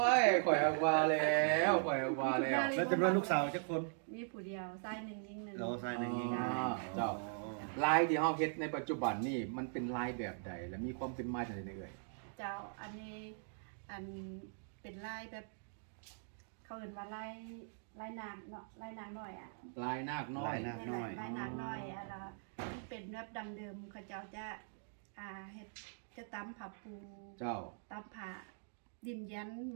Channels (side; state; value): left; silent; digital silence